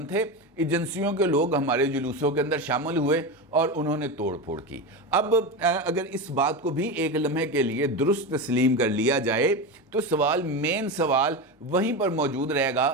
थे, एजेंसियों के लोग हमारे जुलूसों के अंदर शामिल हुए और उन्होंने तोड़ फोड़ की। अब अगर इस बात को भी एक लम्हे के लिए दुरुस्त तस्लीम कर लिया जाए तो सवाल, मेन सवाल वहीं पर मौजूद रहेगा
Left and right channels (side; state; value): both; normal; correlation 0.20